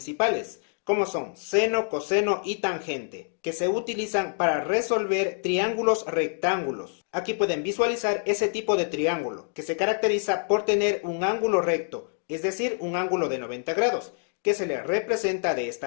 como son seno, coseno y tangente, que se utilizan para resolver triángulos rectángulos. Aquí pueden visualizar ese tipo de triángulo, que se caracteriza por tener un ángulo recto, es decir, un ángulo de 90 grados, que se le representa de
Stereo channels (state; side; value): silent; right; 61 dB below the other